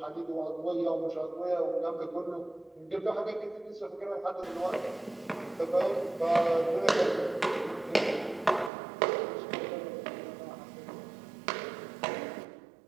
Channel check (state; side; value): drops out; left; at 8.7 s